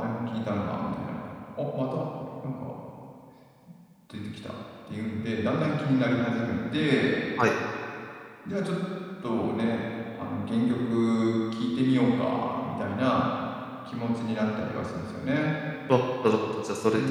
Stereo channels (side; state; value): both; identical; correlation 1.00